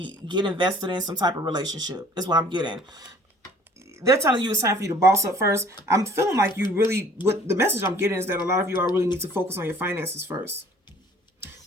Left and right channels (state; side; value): normal; both; correlation 0.53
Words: get invested in some type of relationship, is what I'm getting. They're telling you it's time for you to boss up first. I'm feeling like you really, what the message I'm getting is that a lot of you all really need to focus on your finances first.